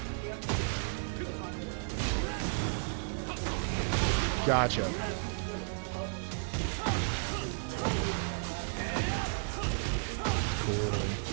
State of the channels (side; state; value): left; silent; digital silence